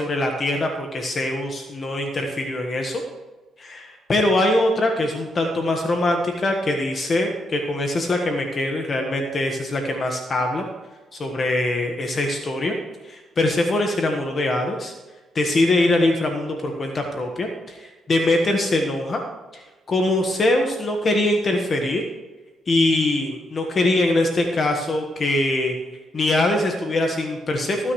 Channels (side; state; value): both; normal; correlation 0.80